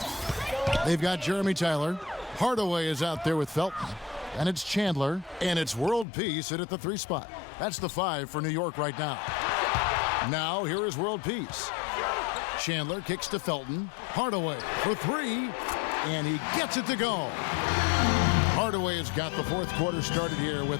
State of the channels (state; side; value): drops out; right; at 6.1 s